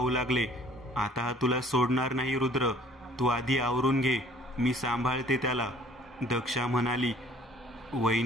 लागले. आता हा तुला सोडणार नाही रुद्र, तू आधी आवरून घे, मी सांभाळते त्याला, दक्षा म्हणाली.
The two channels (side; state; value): both; normal; correlation 0.55